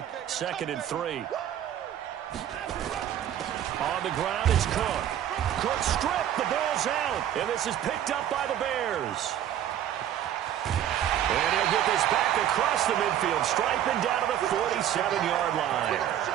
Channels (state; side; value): quieter; left; 10.9 dB